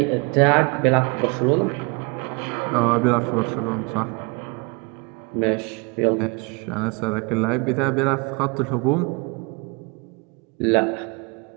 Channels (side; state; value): left; quieter; 29.2 dB